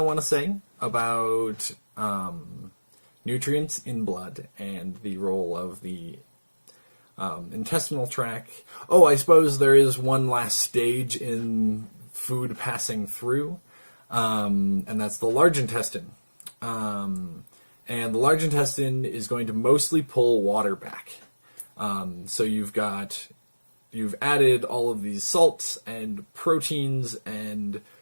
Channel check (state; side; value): inverted; both; correlation -1.00